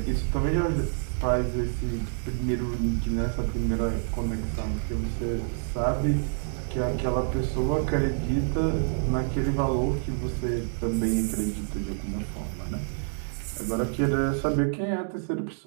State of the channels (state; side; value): silent; left; 60 dB below the other